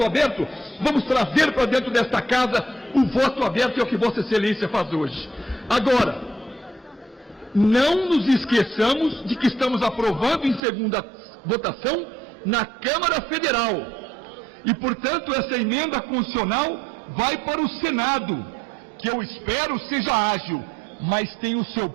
aberto, vamos trazer para dentro desta casa o voto aberto, é o que Vossa Excelência faz hoje. Agora, não nos esqueçamos de que estamos aprovando em segunda votação na Câmara Federal. E, portanto, essa emenda constitucional vai para o Senado, que eu espero seja ágil, mas tem o seu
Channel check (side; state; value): left; drops out; at 10.6 s